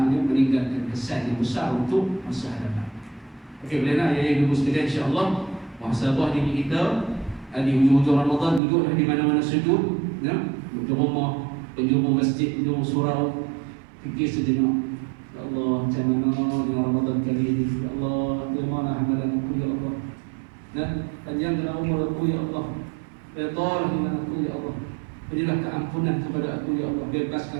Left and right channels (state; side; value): drops out; left; at 8.6 s